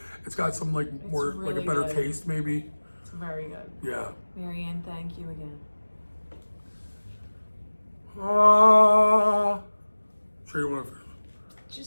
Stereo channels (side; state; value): both; inverted; correlation -1.00